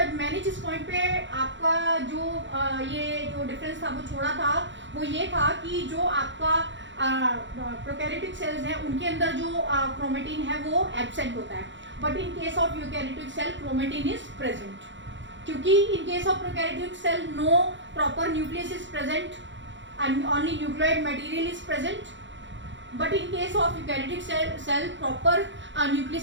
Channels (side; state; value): left; late; 0.54 ms